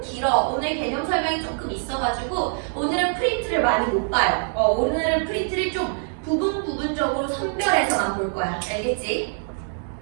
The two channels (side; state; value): left; silent; 63 dB below the other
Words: 길어. 오늘 개념 설명이 조금 있어가지고 오늘은 프린트를 많이 못 봐요. 오늘은 프린트를 좀 부분적으로 선별해서만 볼 거야. 알겠지?